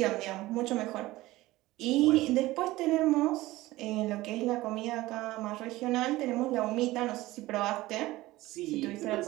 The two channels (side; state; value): left; quieter; 18.1 dB